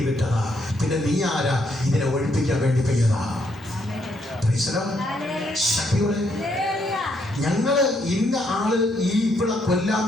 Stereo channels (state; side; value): normal; both; correlation 0.74